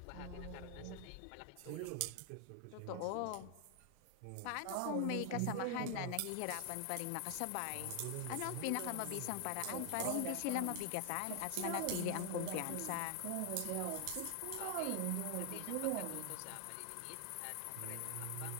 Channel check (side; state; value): both; different; correlation 0.00